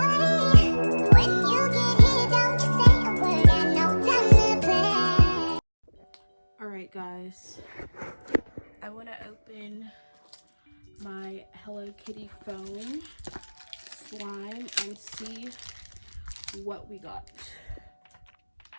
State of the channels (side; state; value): both; inverted; correlation -1.00